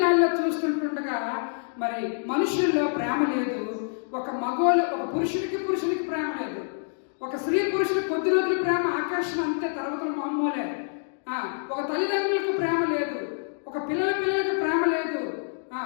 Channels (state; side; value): silent; right; digital silence